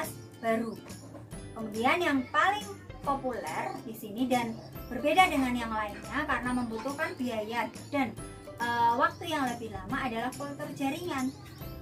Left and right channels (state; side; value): identical; both; correlation 1.00